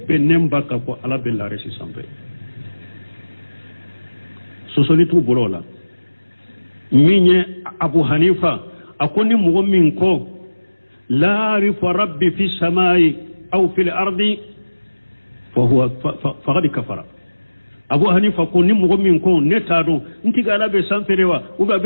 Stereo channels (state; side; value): inverted; both; correlation -1.00